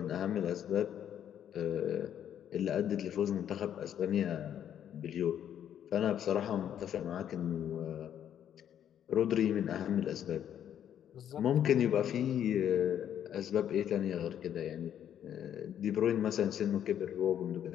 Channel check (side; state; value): right; quieter; 9.8 dB